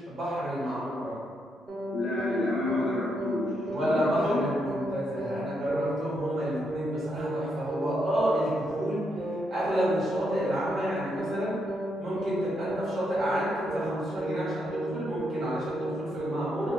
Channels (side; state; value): both; normal; correlation 0.79